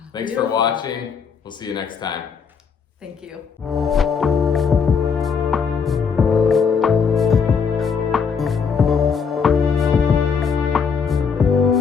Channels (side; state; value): right; quieter; 6.0 dB